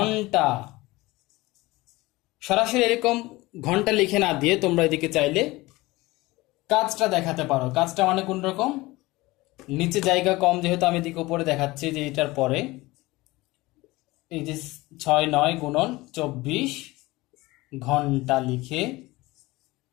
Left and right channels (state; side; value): quieter; right; 20.6 dB